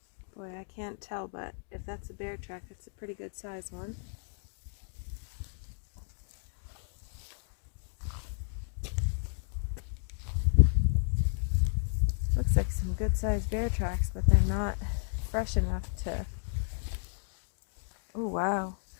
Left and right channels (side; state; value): right; silent; digital silence